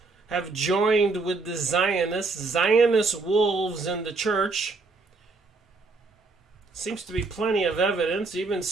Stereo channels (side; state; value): left; quieter; 3.9 dB